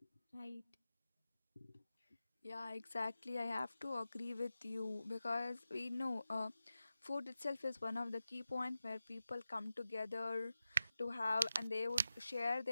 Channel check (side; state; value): both; inverted; correlation -0.93